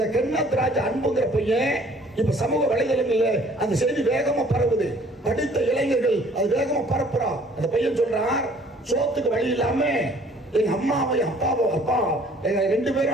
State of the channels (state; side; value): normal; both; correlation 0.56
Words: கென்னத் ராஜா அன்புங்கிற பையன் இப்ப சமூக வலைதளங்கள்ல அந்த செய்தி வேகமா பரவுது. படித்த இளைஞர்கள் அது வேகமா பரப்புறான். அந்த பையன் சொல்றான், சோத்துக்கு வழி இல்லாம எங்க அம்மாவையும் அப்பா எங்க 2